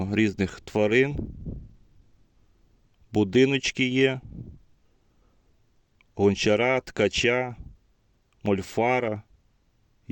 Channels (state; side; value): identical; both; correlation 1.00